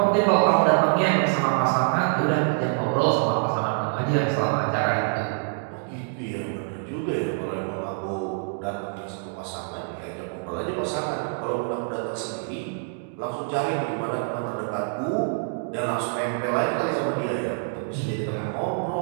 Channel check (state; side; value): silent; left; 61 dB below the other